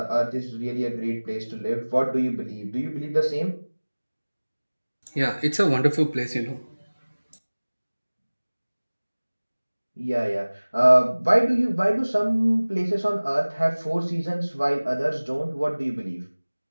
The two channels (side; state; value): both; inverted; correlation -1.00